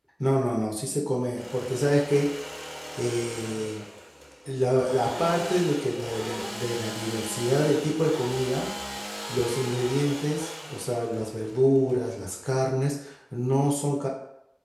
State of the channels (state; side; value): identical; both; correlation 1.00